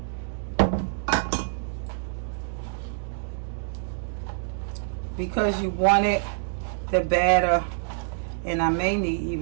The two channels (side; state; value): left; silent; 61 dB below the other